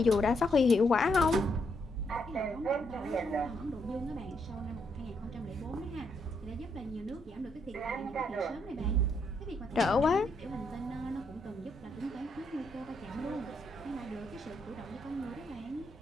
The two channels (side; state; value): both; normal; correlation 0.76